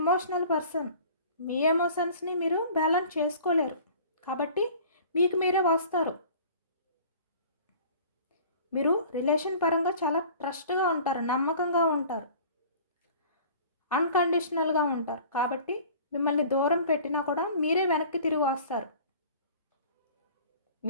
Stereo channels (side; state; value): both; inverted; correlation -0.46